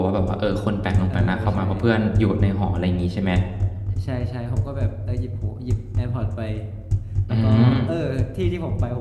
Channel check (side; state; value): both; identical; correlation 1.00